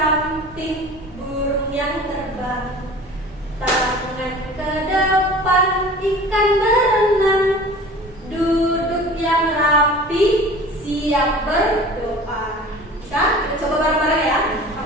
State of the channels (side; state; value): both; normal; correlation 0.41